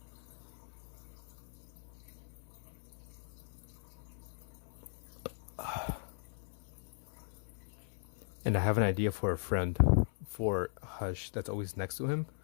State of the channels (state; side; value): silent; right; 52 dB below the other